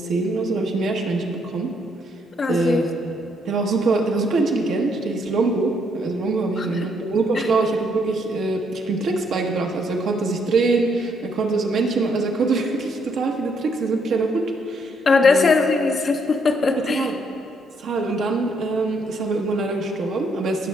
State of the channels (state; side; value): normal; both; correlation 0.72